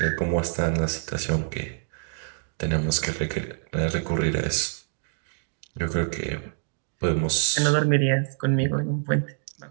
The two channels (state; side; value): silent; left; digital silence